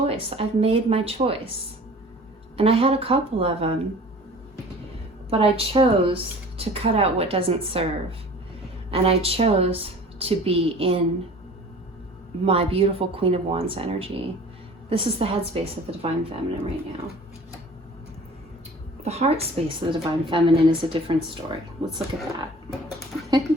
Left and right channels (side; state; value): both; normal; correlation 0.44